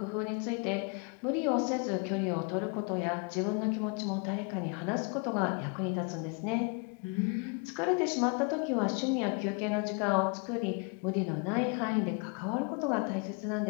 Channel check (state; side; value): quieter; right; 33.9 dB